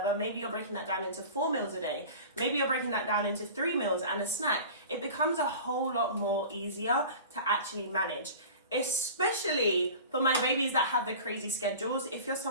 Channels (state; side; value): inverted; both; correlation -0.38